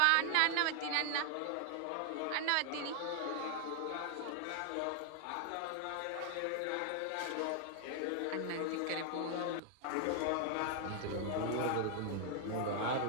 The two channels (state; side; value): different; both; correlation 0.00